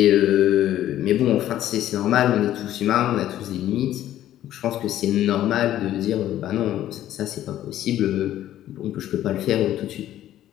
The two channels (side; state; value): right; quieter; 12.6 dB